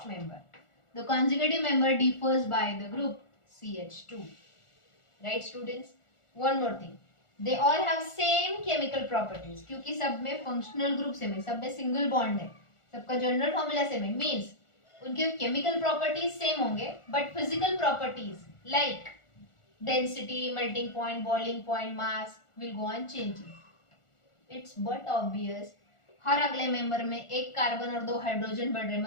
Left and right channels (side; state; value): right; late; 1.4 ms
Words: member. The consecutive member differs by the group CH2. Right students? One more thing. They all have same chemical properties. क्योंकि सब में functional group same है, सब में single bond है, सबका general formula सेम है. Means उनके chemical properties सेम होंगे, but physical properties like density, melting point, boiling point, mass will go on changing. It's but obvious. हर अगले मेंबर में एक कार्बन और 2 हाइड्रोजन बढ़ रहे,